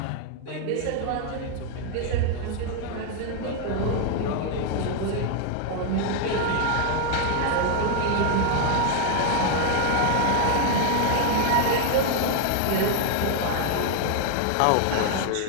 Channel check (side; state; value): both; different; correlation 0.00